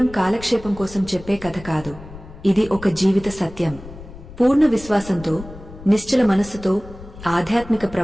కాలక్షేపం కోసం చెప్పే కథ కాదు, ఇది ఒక జీవిత సత్యం. పూర్ణ విశ్వాసంతో, నిశ్చల మనస్సుతో ఆధ్యాత్మిక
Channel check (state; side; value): noise; left; rumble, 16 dB below the sound